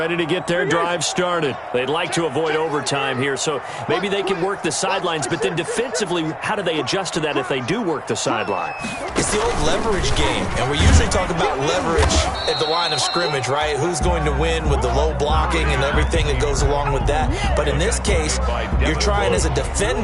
to get their drive started. They'd like to avoid overtime here, so maybe they can work the sidelines, but then defensively, how do they adjust to that if they do work the sideline? It's the old leverage game, and we usually talk about leverage at the line of scrimmage, right? Who's going to win with the low blocking and everything that goes along with that. But in this case, you're trying as a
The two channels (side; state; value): both; identical; correlation 1.00